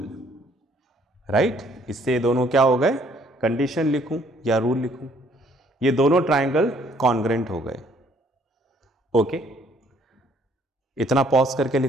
right. इससे ये दोनों क्या हो गए, कंडीशन लिखूं या रूल लिखूं, ये दोनों ट्राइंगल कॉन्ग्रेंट हो गए, ओके। इतना पॉज करके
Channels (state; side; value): normal; both; correlation 0.63